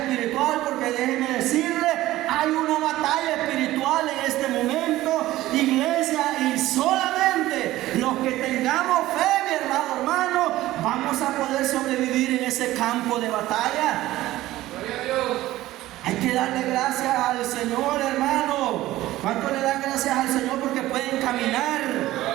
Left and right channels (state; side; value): quieter; left; 16.0 dB